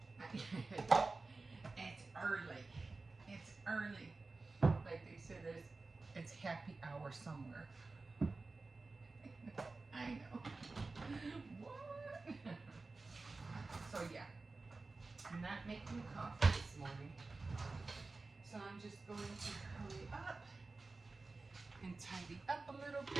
It's early. It's early. Like they said, it's happy hour somewhere. I know. What? So, yeah. I'm not making coffee this morning. So, I'm just going to hurry up and tidy up a little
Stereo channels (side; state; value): left; quieter; 3.6 dB